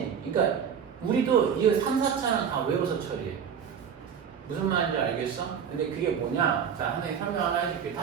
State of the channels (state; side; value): quieter; left; 7.5 dB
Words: 그러니까 우리도 이거 3, 4차는 다 외워서 처리해. 무슨 말인지 알겠어? 근데 그게 뭐냐? 자, 하나 설명 하나 해줄게.